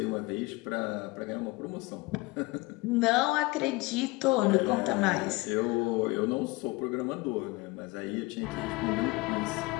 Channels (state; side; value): quieter; right; 22.6 dB